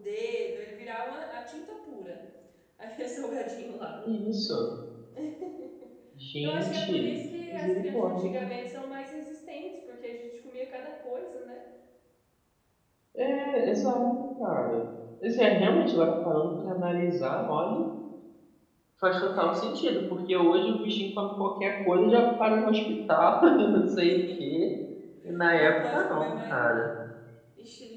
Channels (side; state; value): both; identical; correlation 1.00